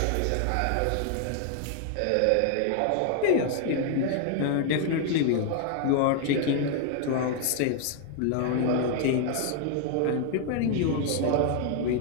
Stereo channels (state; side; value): different; both; correlation 0.00